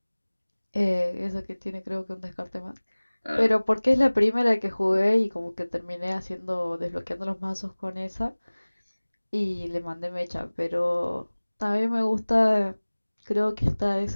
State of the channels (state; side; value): inverted; both; correlation -1.00